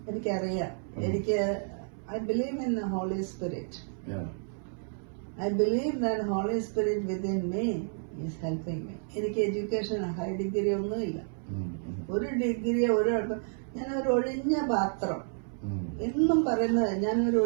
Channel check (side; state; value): left; silent; 57 dB below the other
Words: എനിക്കറിയാം. I believe in the Holy Spirit. I believe that Holy Spirit within me is helping me. എനിക്ക് എഡ്യൂക്കേഷൻ ഹൈ ഡിഗ്രി ഒന്നുമില്ല. ഒരു ഡിഗ്രി ഞാനൊരു ഒഴിഞ്ഞ പാത്രം. എന്നും പറയുന്നത് ഞാനൊരു